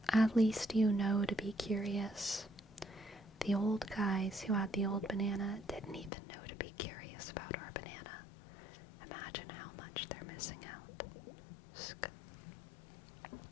at least you know to be curious. The old guys who had the old banana didn't even know to be curious about our banana. Imagine how much they're missing out.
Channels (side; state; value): right; drops out; at 6.1 s